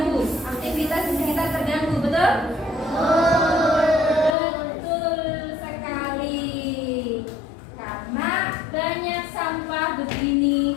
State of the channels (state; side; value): drops out; right; at 4.4 s